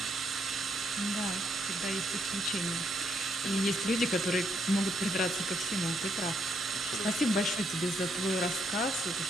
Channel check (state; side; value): normal; both; correlation 0.75